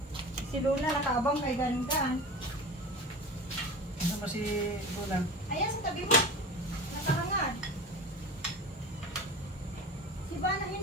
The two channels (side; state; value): both; normal; correlation 0.34